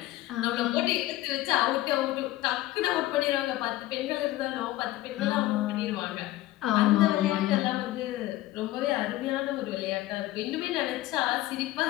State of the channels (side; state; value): right; quieter; 16.4 dB